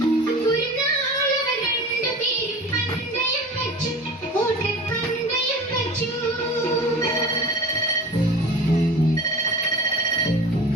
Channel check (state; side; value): normal; both; correlation 0.37